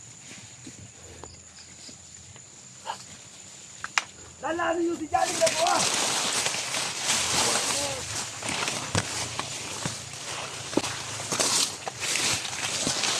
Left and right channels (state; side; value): identical; both; correlation 1.00